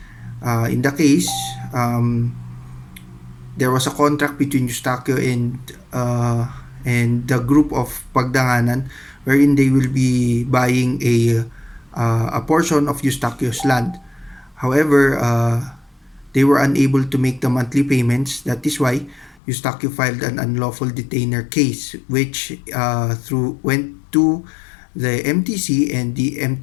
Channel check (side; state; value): right; drops out; at 19.4 s